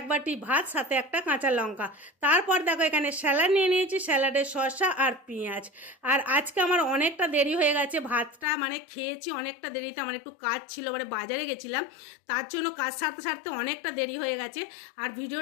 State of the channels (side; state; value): right; drops out; at 8.5 s